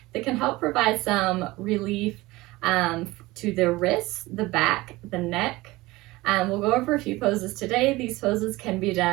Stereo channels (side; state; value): left; quieter; 20.1 dB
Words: that can help provide some relief to the wrists, the back, the neck. We'll go over a few poses today. These poses can be